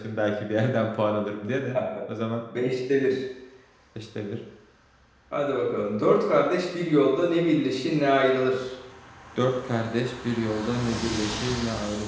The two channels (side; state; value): both; identical; correlation 1.00